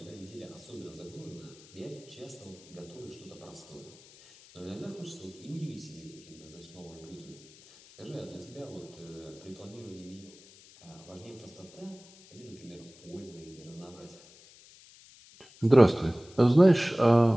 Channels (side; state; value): left; noise; hiss, 23 dB below the sound